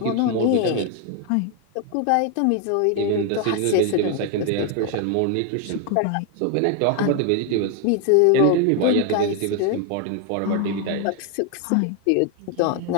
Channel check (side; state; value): both; different; correlation 0.01